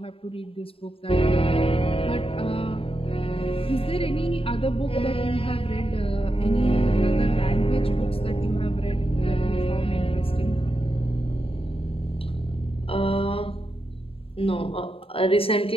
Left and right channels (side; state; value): right; late; 0.27 ms